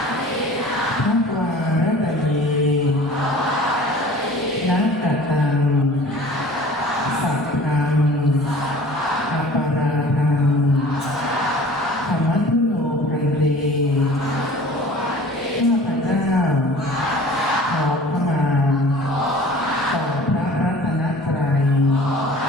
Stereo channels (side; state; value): both; normal; correlation 0.45